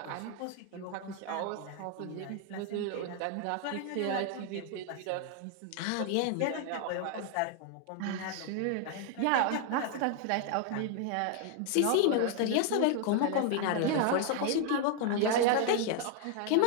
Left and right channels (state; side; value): different; both; correlation 0.00